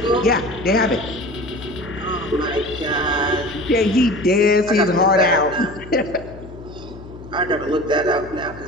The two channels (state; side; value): noise; left; hum, 16 dB below the sound